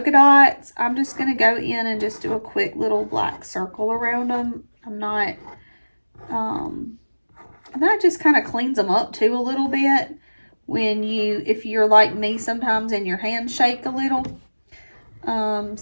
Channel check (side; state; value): both; inverted; correlation -1.00